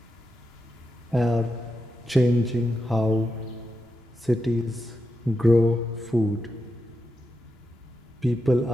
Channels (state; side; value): normal; both; correlation 0.87